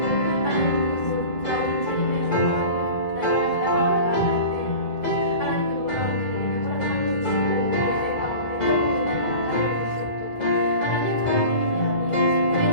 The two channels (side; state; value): right; late; 2.0 ms